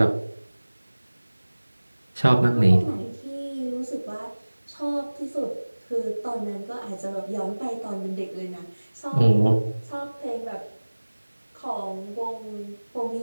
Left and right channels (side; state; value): both; inverted; correlation -1.00